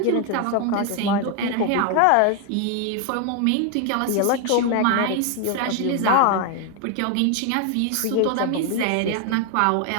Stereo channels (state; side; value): different; both; correlation 0.01